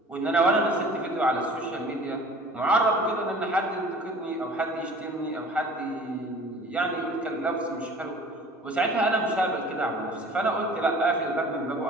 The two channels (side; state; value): both; normal; correlation 0.46